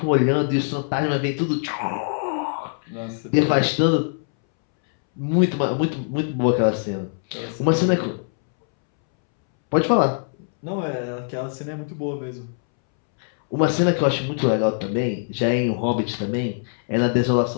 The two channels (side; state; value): right; silent; 64 dB below the other